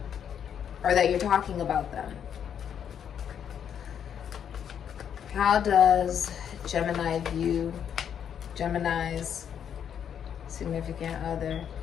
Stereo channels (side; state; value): right; quieter; 8.5 dB